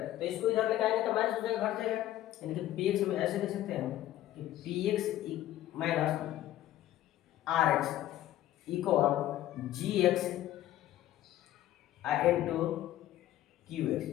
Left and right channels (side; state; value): right; quieter; 13.6 dB